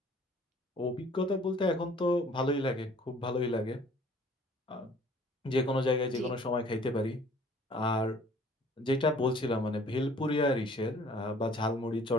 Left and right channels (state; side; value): normal; both; correlation 0.54